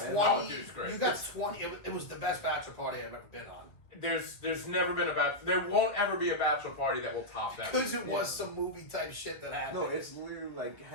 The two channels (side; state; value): right; late; 1.6 ms